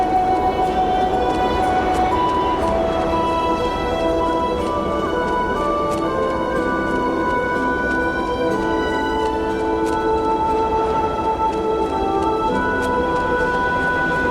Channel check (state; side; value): identical; both; correlation 1.00